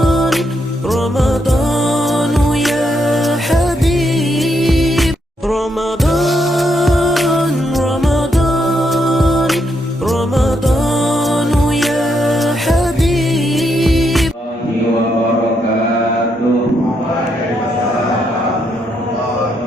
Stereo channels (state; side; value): normal; both; correlation 0.78